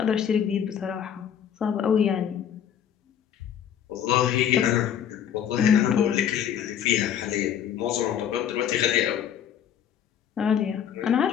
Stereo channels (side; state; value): right; quieter; 9.1 dB